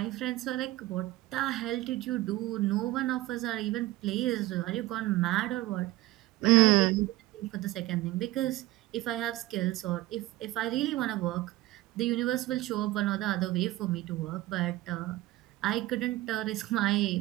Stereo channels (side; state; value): left; quieter; 17.5 dB